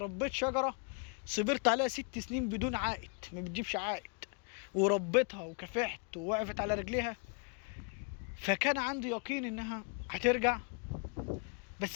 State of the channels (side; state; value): right; quieter; 37.5 dB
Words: شجرة صبرت عليها 6 سنين بدون عائد، ما بتجيبش عائد، وربيتها وكافحت ووقفت على رجليها، فكان عندي يقين انها هترجع.